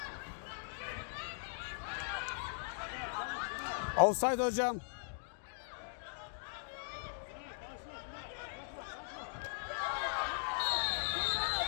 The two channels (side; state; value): right; silent; digital silence